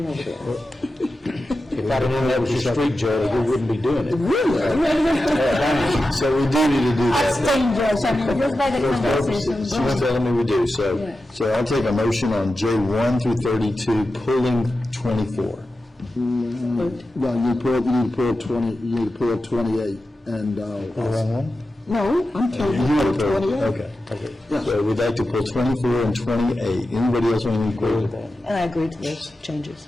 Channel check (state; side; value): normal; both; correlation 0.92